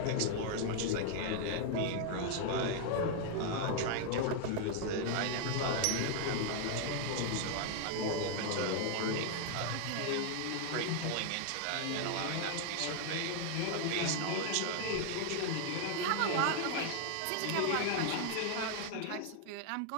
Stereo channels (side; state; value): both; different; correlation 0.00